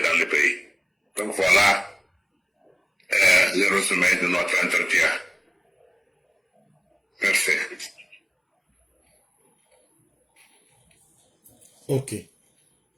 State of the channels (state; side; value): identical; both; correlation 1.00